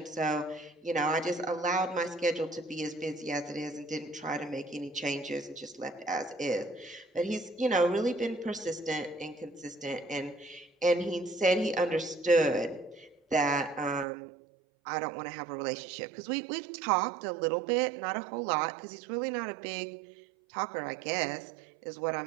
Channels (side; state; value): left; drops out; at 14.1 s